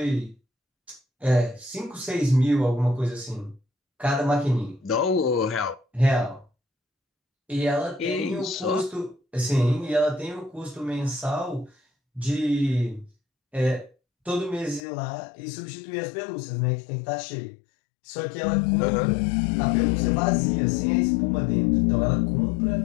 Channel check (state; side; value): drops out; right; at 14.8 s